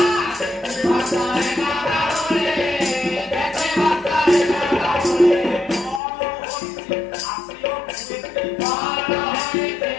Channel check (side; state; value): right; drops out; at 6.0 s